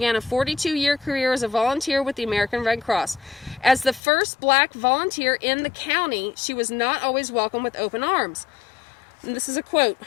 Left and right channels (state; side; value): drops out; right; at 4.0 s